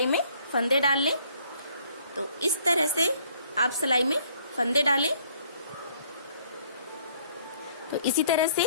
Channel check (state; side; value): inverted; both; correlation -0.61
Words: में फंदे डाल लें। तो इस तरह से आप सिलाई में फंदे डालें। तो इसी तरह